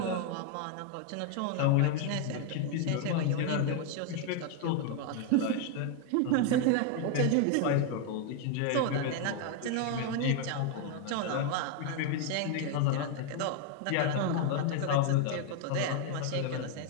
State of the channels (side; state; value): both; different; correlation 0.01